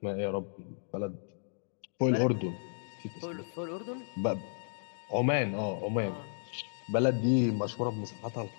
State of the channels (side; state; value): right; silent; digital silence